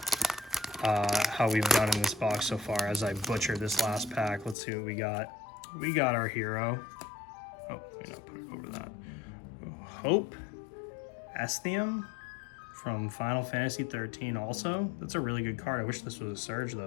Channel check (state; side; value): drops out; right; at 4.5 s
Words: how we've done in this box so far as I butcher this last pack. Let's see what we got. We got our hero. Oh, let me not put it over that. Hope Esthium from Final Fantasy 13 also. That's a really good card. I wish this was a Surge